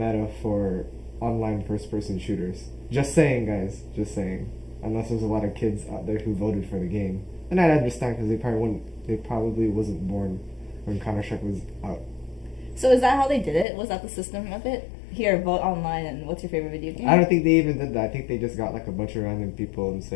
for online first-person shooters. Just saying, guys. Just saying. Unless there's a lot of kids out there who voted for the game, and I understand because they probably wasn't born when Counter-Strike was out. So is that how they did it? Was that the system of it? Here, vote online, and what's your favorite video game? I don't think they even did that. I think they just got like a bunch of random people and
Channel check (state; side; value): drops out; right; at 13.7 s